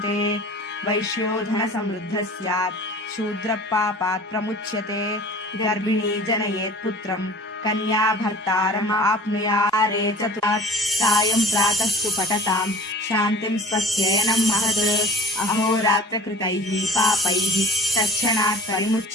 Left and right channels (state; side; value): normal; both; correlation 0.45